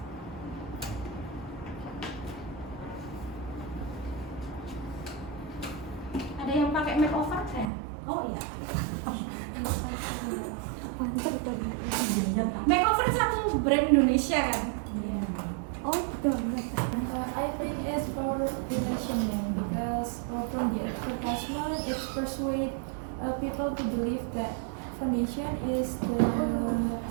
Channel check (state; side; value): drops out; left; at 7.7 s